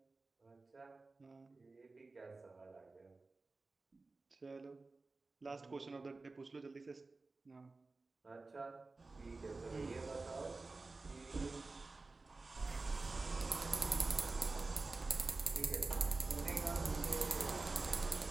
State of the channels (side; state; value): left; quieter; 3.6 dB